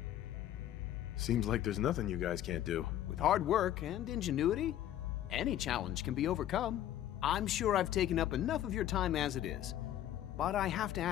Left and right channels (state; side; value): quieter; right; 12.0 dB